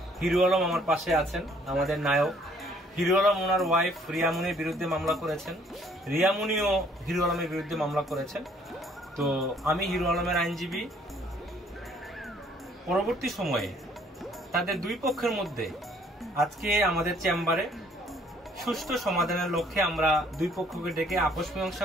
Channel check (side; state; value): both; normal; correlation 0.62